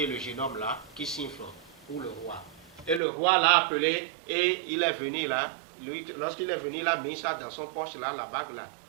le jeune homme là, qui siffle pour le roi. Et le roi l'a appelé et il est venu là. Lorsqu'il est venu, il a mis ça dans son poche là, la bague là.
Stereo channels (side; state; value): left; drops out; at 3.0 s